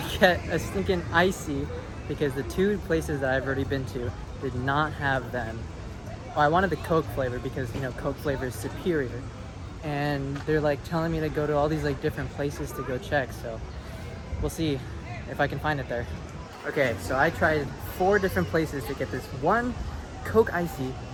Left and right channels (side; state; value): both; identical; correlation 1.00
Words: get a stinking icy because the two places that I've already been to did not have them. Well, I wanted the Coke flavor because, you know, Coke flavor is superior. And they're like telling me to go to all these like different places to go check, so we'll see if I can find it there. Okay, so I tried 4 different places to get this one Coke icy